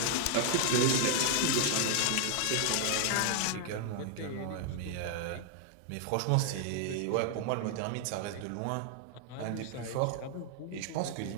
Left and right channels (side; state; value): both; different; correlation 0.00